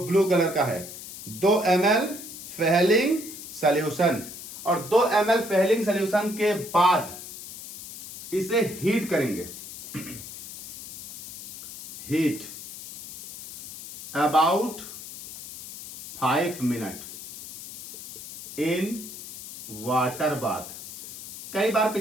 कलर का है। 2 ml फेहलिंग सॉल्यूशन, और 2 ml फेहलिंग सॉल्यूशन के बाद इसे हीट करेंगे, heat about 5 minute in water bath. कई बार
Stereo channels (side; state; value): left; noise; hiss, 12 dB below the sound